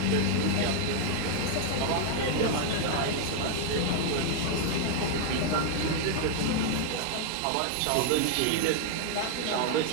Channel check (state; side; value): different; both; correlation 0.00